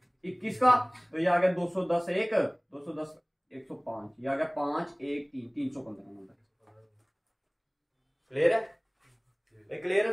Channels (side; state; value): both; identical; correlation 1.00